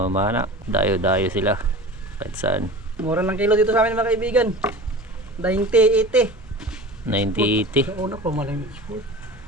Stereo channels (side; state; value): both; normal; correlation 0.35